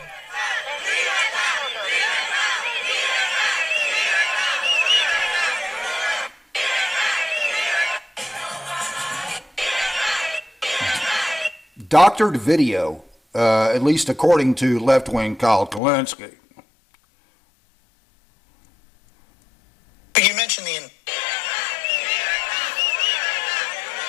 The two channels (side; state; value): right; drops out; at 15.8 s